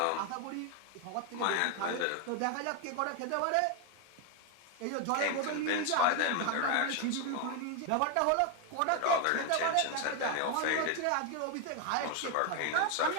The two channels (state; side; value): different; both; correlation 0.01